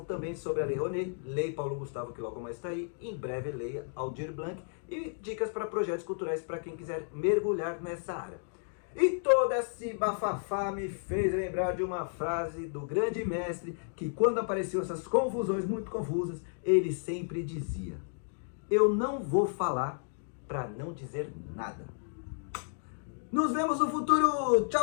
também sobre a Lei Rouanet, Lei Paulo Gustavo, que logo mais está aí, em breve Lei Aldir Blanc, e dicas para projetos culturais para quem quiser mergulhar nessa área. E todo esse bafafá me fez lembrar de uma frase do grande mestre, que quando apareciam essas confusões muito confusas, ele sempre dizia: eu não vou falar para não dizer nada. Nos vemos no futuro. Tchau,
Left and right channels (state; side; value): silent; right; digital silence